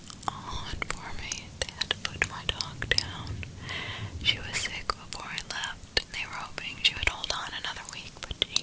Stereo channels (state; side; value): identical; both; correlation 1.00